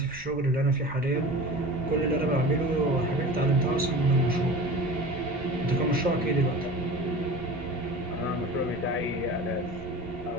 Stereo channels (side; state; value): right; noise; rumble, 17 dB below the sound